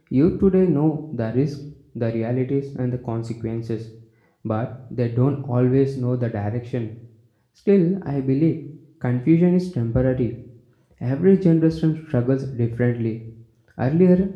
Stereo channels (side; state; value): both; identical; correlation 1.00